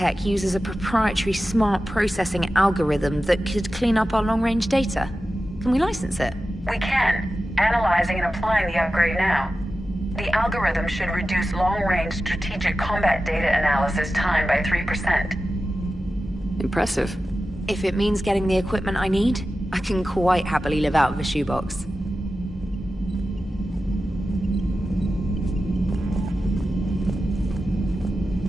uses a proprietary smart processing algorithm that could clean up our long-range data. Can we license it? We can. Analyzing and applying the upgrade now. The algorithm should reduce long-range strategic combat data analysis time by 3%. Impressive. If it means getting the equipment I need, I can quite happily live out of a shoebox.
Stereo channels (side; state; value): both; normal; correlation 0.93